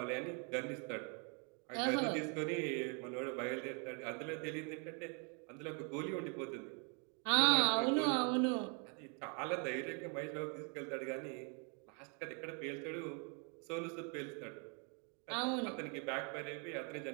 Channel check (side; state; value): left; quieter; 37.4 dB